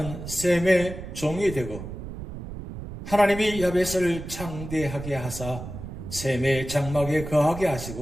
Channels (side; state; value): right; noise; rumble, 10 dB below the sound